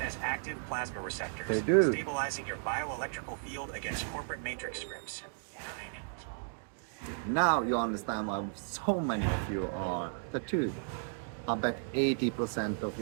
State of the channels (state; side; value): silent; left; digital silence